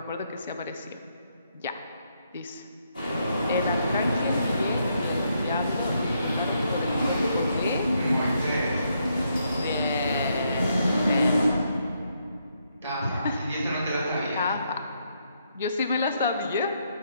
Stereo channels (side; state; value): both; inverted; correlation -0.77